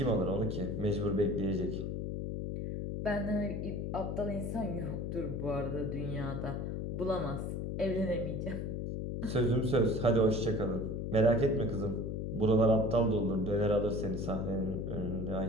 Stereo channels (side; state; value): left; noise; hum, 3 dB below the sound